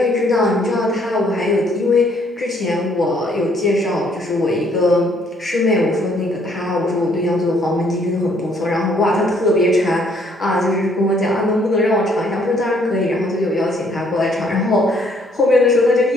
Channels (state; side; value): normal; both; correlation 0.65